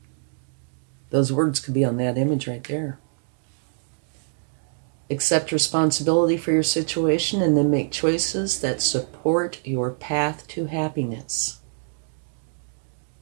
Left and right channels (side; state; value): left; silent; digital silence